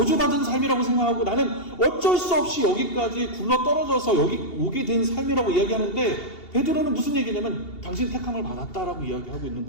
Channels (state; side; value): late; right; 2.8 ms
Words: 삶이라고 생각하고 나는 어쩔 수 없이 여기까지 굴러 떨어져서 여기 오게 된 삶이라고 이야기하는데 베드로는 무슨 얘기냐면 당신 택함을 받았다라고 이야기하고 있는